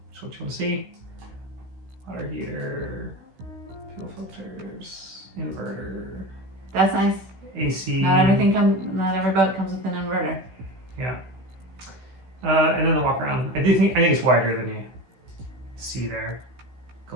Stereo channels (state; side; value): late; left; 16 ms